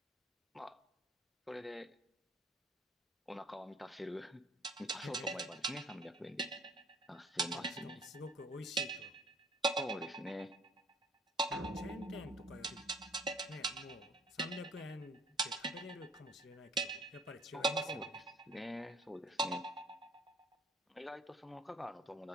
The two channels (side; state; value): both; normal; correlation 0.56